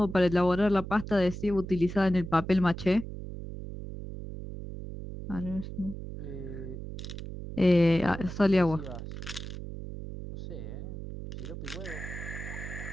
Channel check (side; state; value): right; noise; hum, 9 dB below the sound